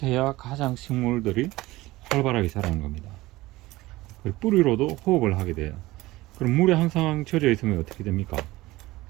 해야 가장 식물들이 활발하게 자라는 겁니다. 그리고 뿌리로도 호흡을 하게 돼요. 그럼 물에 항상 젖어 있으면 어떻게 됩니까?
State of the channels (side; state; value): left; quieter; 18.9 dB